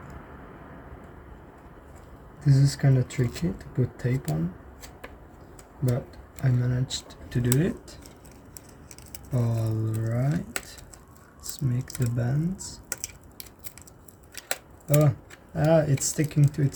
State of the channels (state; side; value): identical; both; correlation 1.00